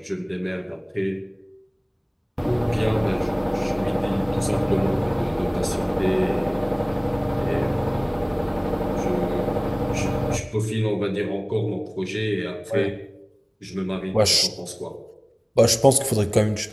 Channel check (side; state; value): both; identical; correlation 1.00